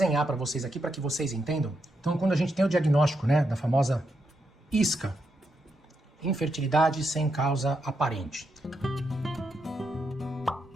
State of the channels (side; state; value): both; normal; correlation 0.82